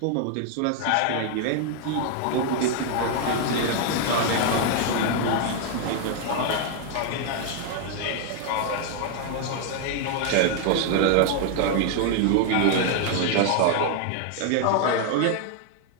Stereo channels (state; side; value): different; both; correlation 0.00